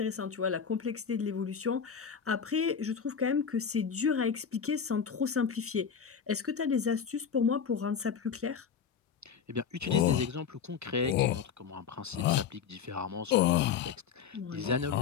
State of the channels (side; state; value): right; quieter; 7.0 dB